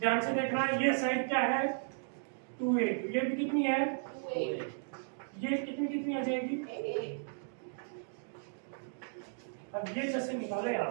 से देखना, ये साइड क्या है 2a, ये भी कितनी है, ये कितनी आ जाएगी। अब ये जैसे निकाले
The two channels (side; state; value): left; silent; digital silence